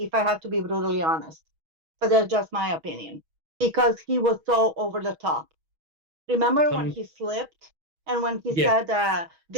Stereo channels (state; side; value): late; left; 6.3 ms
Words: I have to be brutally honest. But that's just my opinion. Because he was so over the top. Remember when Come, he slipped and when he yes, said,